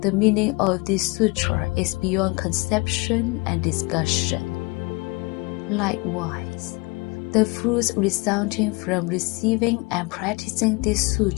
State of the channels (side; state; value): right; quieter; 26.6 dB